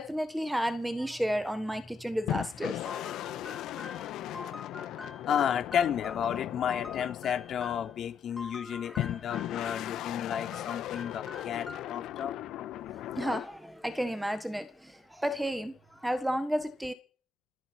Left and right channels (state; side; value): quieter; right; 4.4 dB